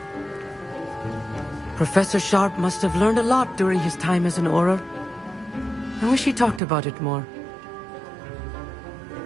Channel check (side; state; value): left; drops out; at 6.6 s